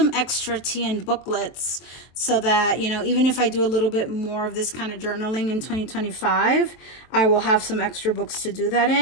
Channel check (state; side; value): late; right; 23 ms